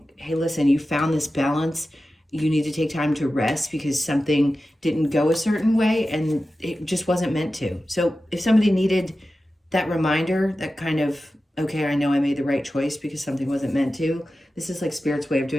hey, listen, you found this balance. You need to take time to rest because something didn't go a certain way and it just wasn't meant to. So if somebody needed that reminder, that kind of, okay, I know I made the right choice because something wasn't meant to. This is like Spirit's way of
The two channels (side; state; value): both; normal; correlation 0.94